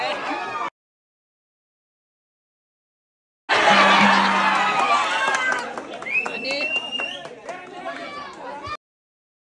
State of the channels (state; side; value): identical; both; correlation 1.00